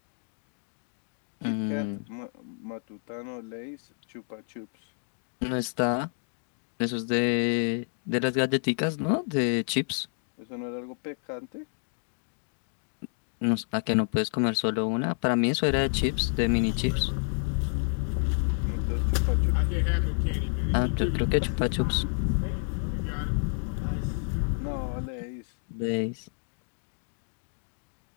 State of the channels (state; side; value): silent; right; 57 dB below the other